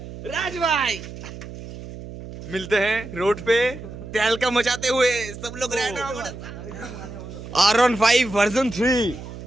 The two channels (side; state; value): right; noise; hum, 12 dB below the sound